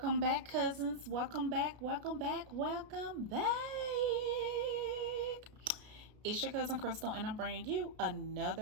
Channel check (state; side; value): late; left; 33 ms